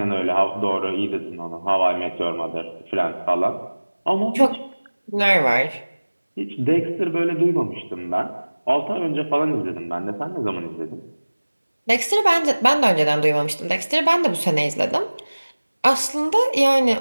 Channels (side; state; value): both; inverted; correlation -1.00